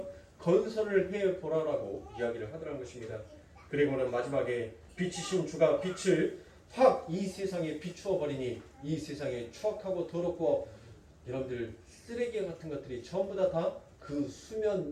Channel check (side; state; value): both; identical; correlation 1.00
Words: 건설을 해보라라고 이야기를 하더란 것입니다. 그리고는 마지막에 빛이신 주가 빛을 확 이 세상에 비추어 버리니 이 세상에 추악하고 더럽고 여러분들 쓰레기 같은 것들이 전부 다 그